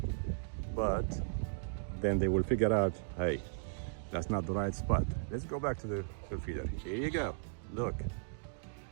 but then they will figure out, hey, that's not the right spot. Let's go back to the feeder. Here you go. Look.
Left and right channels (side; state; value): left; silent; digital silence